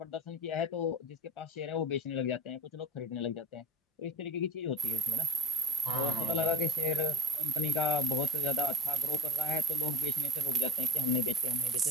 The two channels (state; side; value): normal; both; correlation 0.46